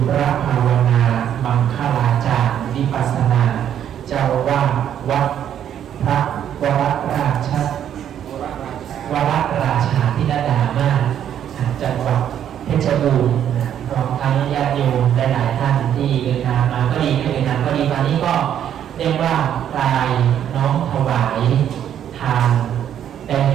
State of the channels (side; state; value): left; quieter; 9.9 dB